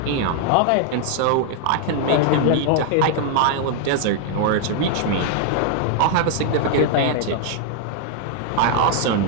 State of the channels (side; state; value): both; different; correlation 0.00